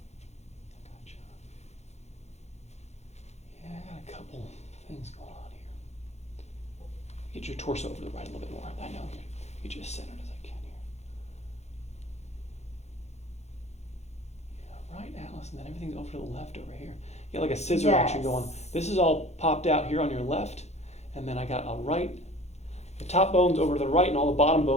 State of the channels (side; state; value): right; late; 0.32 ms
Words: Gotcha. Yeah, I got a couple things going on here. Get your torso over to the right a little bit more. I know. Get you as centered as I can here. Yeah, right, Alice, and then everything's over to the left over here. You got like a scissor action going. This is all popped out here on your left, and then I got a right. The top bone's over to the right, and all the bottom